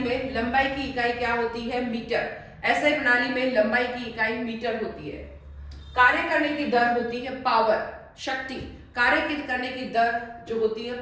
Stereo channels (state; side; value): identical; both; correlation 1.00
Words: लंबाई की इकाई क्या होती है? मीटर। एसआई प्रणाली में लंबाई की इकाई मीटर होती है। कार्य करने की दर होती है पावर, शक्ति। कार्य करने की दर जो होती है